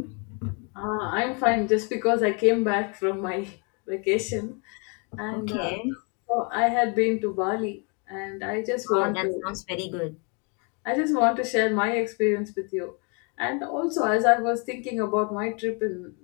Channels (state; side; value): quieter; right; 35.0 dB